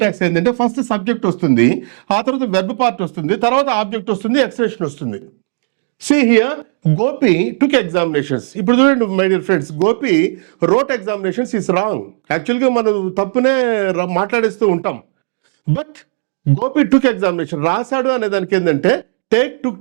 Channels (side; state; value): left; silent; digital silence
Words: ఏంటంటే ఫస్ట్ సబ్జెక్ట్ వస్తుంది, ఆ తర్వాత వెర్బ్ పార్ట్ వస్తుంది, తర్వాత ఆబ్జెక్ట్ వస్తుంది, ఎక్స్ప్రెషన్ వస్తుంది. See here, Gopi took examinations. ఇప్పుడు చూడండి my dear friends, Gopi wrote examinations is wrong. యాక్చువల్గా మనం తప్పునే మాట్లాడేస్తూ ఉంటాం. బట్ గోపి టుక్ ఎగ్జామినేషన్, రాశాడు అనే దానికి ఏంటంటే టేక్ టుక్